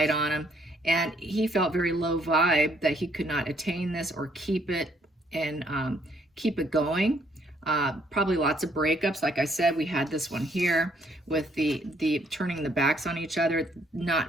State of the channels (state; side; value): normal; both; correlation 0.67